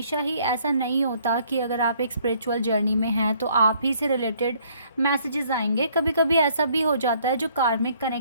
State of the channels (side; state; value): both; inverted; correlation -0.63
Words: ही ऐसा नहीं होता कि अगर आप एक स्पिरिचुअल जर्नी में हैं तो आप ही से रिलेटेड मैसेजेस आएंगे। कभी कभी ऐसा भी हो जाता है जो कार्मिक